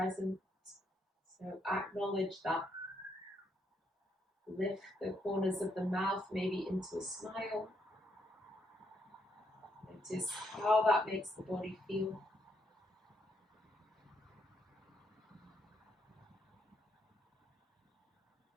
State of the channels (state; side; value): normal; both; correlation 0.76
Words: So acknowledge that. Lift the corners of the mouth maybe into a smile. Notice how that makes the body feel.